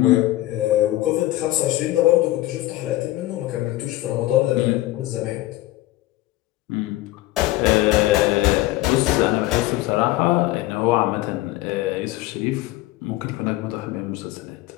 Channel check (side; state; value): right; quieter; 16.8 dB